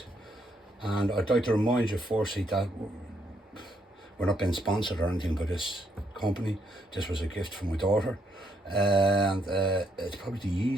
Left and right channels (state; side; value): normal; both; correlation 0.75